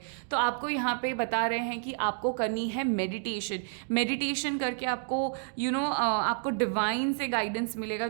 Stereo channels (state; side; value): silent; left; digital silence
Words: तो आपको यहाँ पे बता रहे हैं कि आपको करनी है मेडिटेशन करके आपको आपको डिवाइन से गाइडेंस मिलेगा।